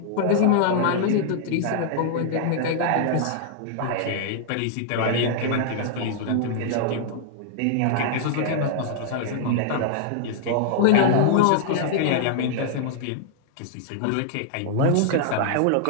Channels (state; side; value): different; both; correlation -0.01